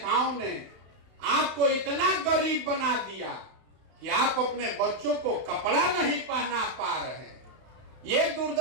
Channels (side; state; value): left; late; 32 ms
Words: ने आपको इतना गरीब बना दिया कि आप अपने बच्चों को कपड़ा नहीं पहना पा रहे, ये